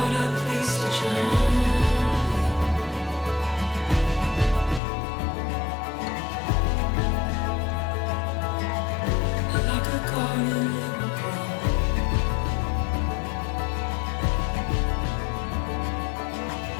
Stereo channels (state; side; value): drops out; right; at 4.8 s